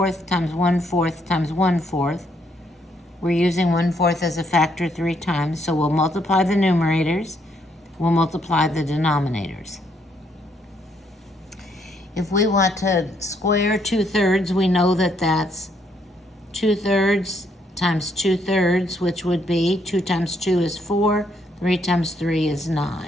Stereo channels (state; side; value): normal; both; correlation 0.72